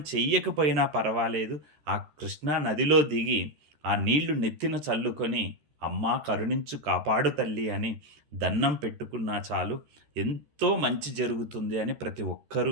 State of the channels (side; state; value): left; late; 13 ms